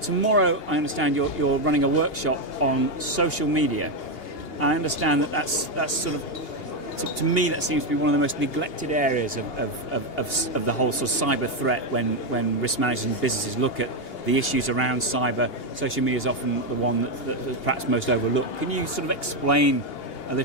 I understand you're running a workshop on social media. I understand that's sort of, to me, that seems to be one of the most neglected areas of the whole sort of cyber threat when risk managers and businesses look at the issues around cyber. Social media is often the one that's perhaps most overlooked. Can you sort of explain a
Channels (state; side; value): late; right; 2.8 ms